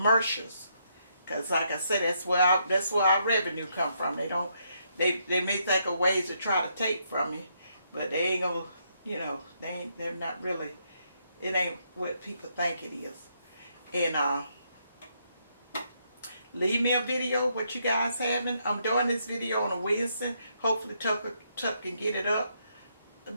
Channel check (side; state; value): both; inverted; correlation -0.76